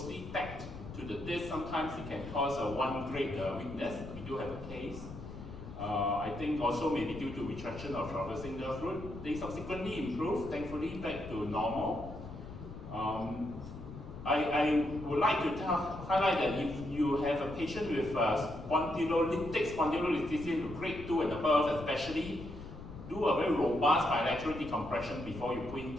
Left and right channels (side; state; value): left; noise; rumble, 12 dB below the sound